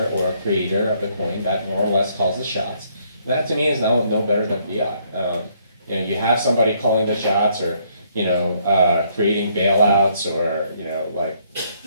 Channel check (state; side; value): inverted; both; correlation -0.69